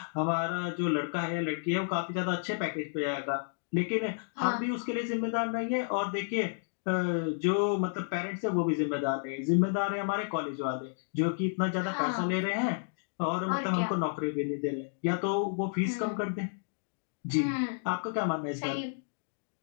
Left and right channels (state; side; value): silent; right; digital silence